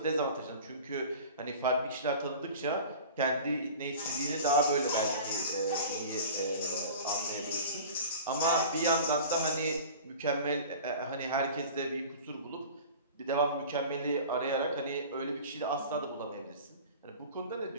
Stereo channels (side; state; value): both; inverted; correlation -0.39